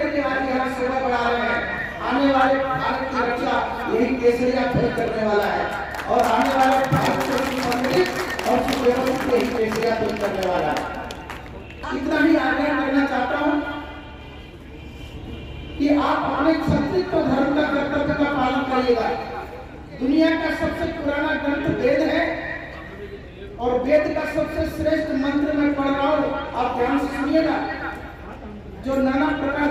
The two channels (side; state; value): both; identical; correlation 1.00